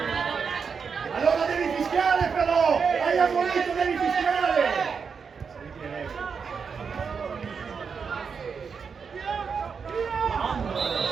allora devi fischiare però, hai ammonito, devi fischiare,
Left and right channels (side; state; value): left; quieter; 5.9 dB